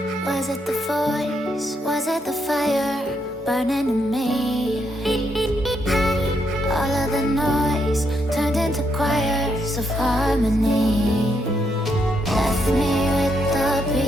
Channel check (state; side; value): normal; both; correlation 0.77